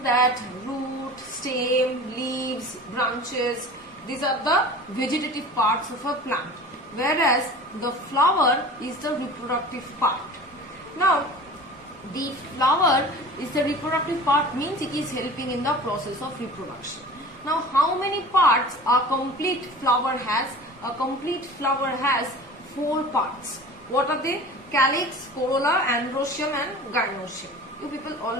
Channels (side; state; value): both; normal; correlation 0.39